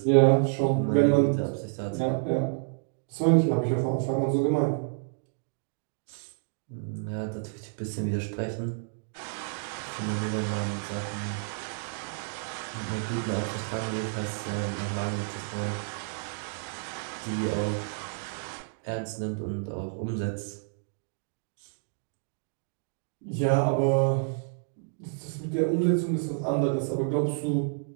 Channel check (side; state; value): left; silent; digital silence